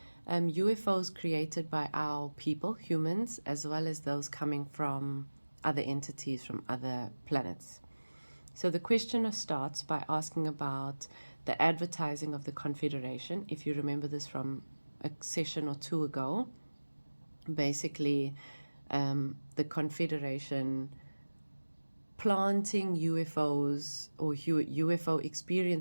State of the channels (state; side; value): inverted; both; correlation -1.00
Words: UFOs created by our people, humans, as well as those coming from other entities from other planets. So the questioner starts by asking about the advertising of the Confederation. If you remember this from a session or two ago, basically the Confederation planting UFOs or UFO